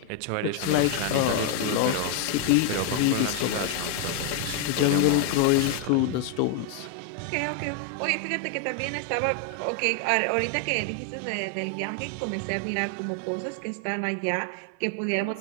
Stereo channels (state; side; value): different; both; correlation 0.01